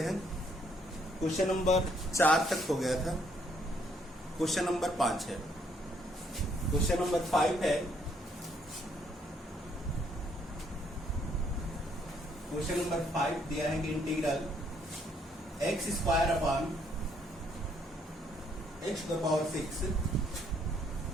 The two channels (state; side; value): normal; both; correlation 0.69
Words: हैं। क्वेश्चन नंबर 4 तक हो गया था, क्वेश्चन नंबर 5 है। क्वेश्चन नंबर 5 है, क्वेश्चन नंबर 5 दिया है कि integral x square upon x to the power 6